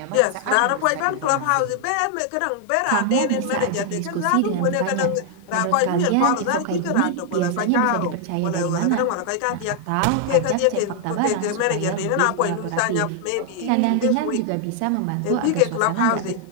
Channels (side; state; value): both; different; correlation 0.00